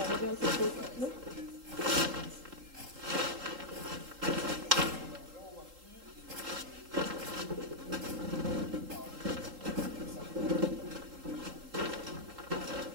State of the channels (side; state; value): left; late; 3.8 ms